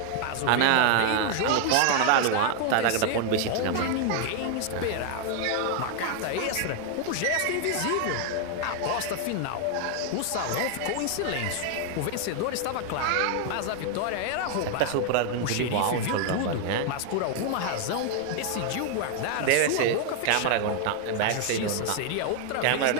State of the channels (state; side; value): different; both; correlation 0.00